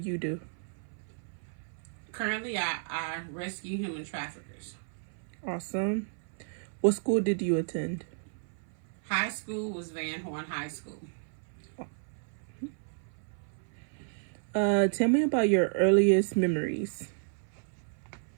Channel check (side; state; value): left; silent; 56 dB below the other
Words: do? Currently, I rescue human traffickers. Awesome. What school did you attend? High school was Van Horn High School. Tell me about your earliest memories.